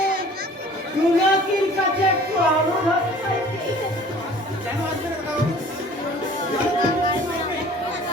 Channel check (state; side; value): normal; both; correlation 0.49